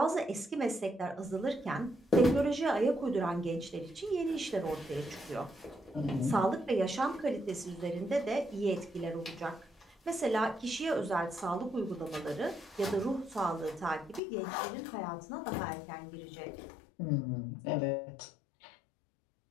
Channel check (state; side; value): drops out; right; at 14.2 s